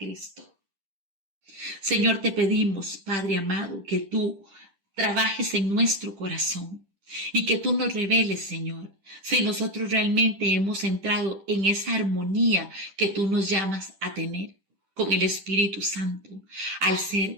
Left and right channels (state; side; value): late; left; 10 ms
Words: Señor, te pedimos, Padre amado, que tú trabajes en nuestro corazón y que tú nos reveles, Señor, si nosotros realmente hemos entrado en esa armonía que tú nos llamas a tener con el Espíritu Santo, al